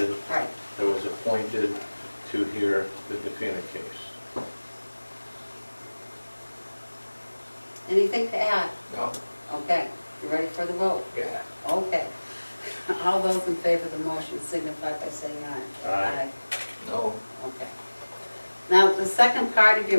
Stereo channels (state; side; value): inverted; both; correlation -1.00